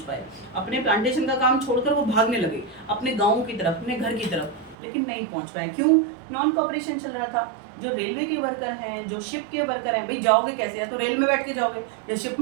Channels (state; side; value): drops out; left; at 4.8 s